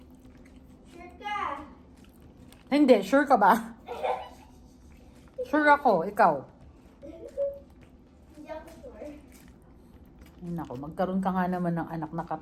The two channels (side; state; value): both; identical; correlation 1.00